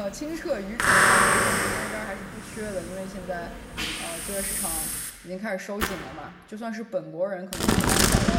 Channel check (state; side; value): identical; both; correlation 1.00